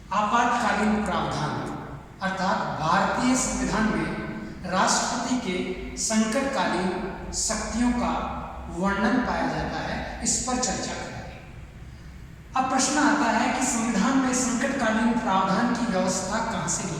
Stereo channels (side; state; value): both; identical; correlation 1.00